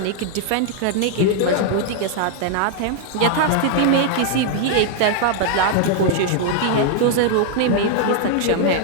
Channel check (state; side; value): different; both; correlation 0.00